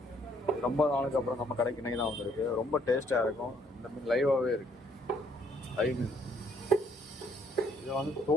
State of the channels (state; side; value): normal; both; correlation 0.66